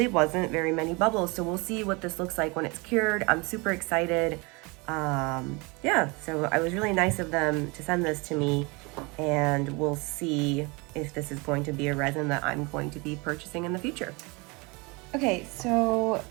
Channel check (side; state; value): left; quieter; 27.6 dB